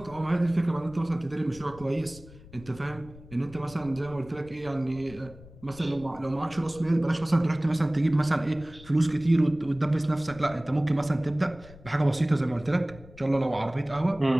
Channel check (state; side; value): noise; left; rumble, 20 dB below the sound